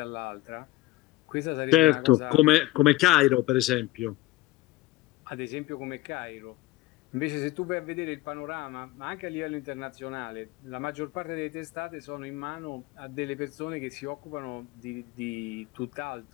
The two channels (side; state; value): right; quieter; 18.7 dB